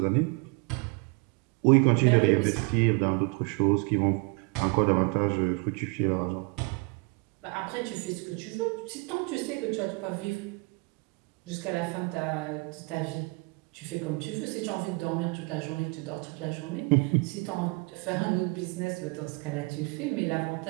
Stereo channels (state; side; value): quieter; left; 29.6 dB